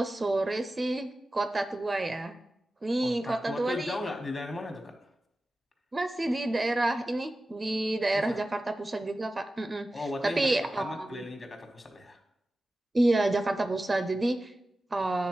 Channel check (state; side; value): normal; both; correlation 0.94